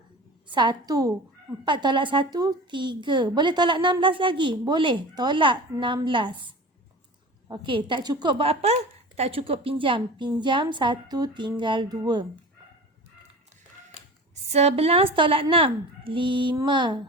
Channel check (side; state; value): both; normal; correlation 0.35